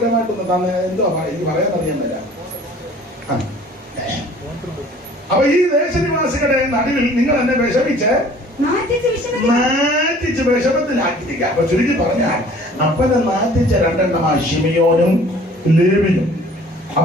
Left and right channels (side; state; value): both; normal; correlation 0.51